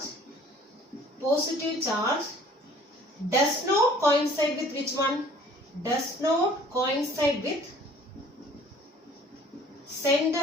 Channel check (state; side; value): normal; both; correlation 0.53